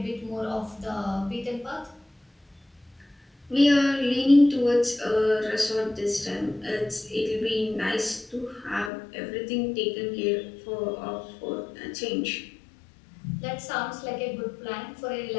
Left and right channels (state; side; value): drops out; right; at 8.9 s